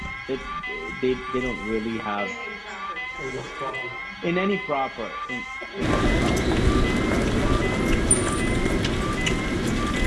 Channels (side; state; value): both; identical; correlation 1.00